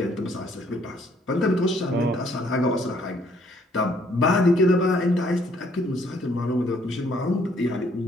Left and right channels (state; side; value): normal; both; correlation 0.65